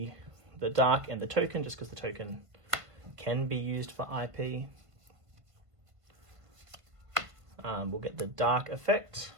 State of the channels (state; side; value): late; left; 1.4 ms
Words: Dark and the token, just because the token can be used for IP. We'll get the Dark effect